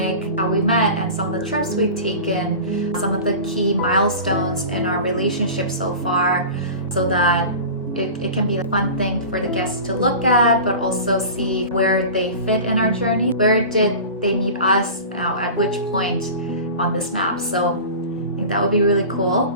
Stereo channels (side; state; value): both; inverted; correlation -0.34